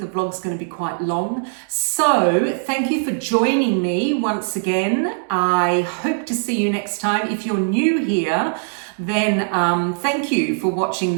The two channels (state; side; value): silent; left; digital silence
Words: vlog's going to be quite long. So thank you for joining me once again. I hope to see you next time. If you're new here, then thank you for watching